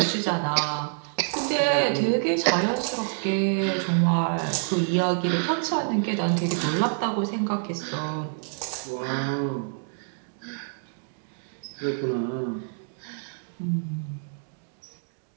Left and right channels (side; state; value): left; silent; digital silence